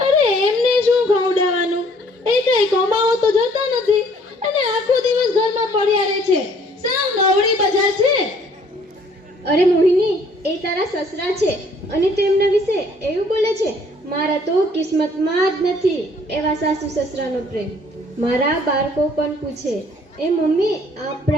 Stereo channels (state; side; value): normal; both; correlation 0.60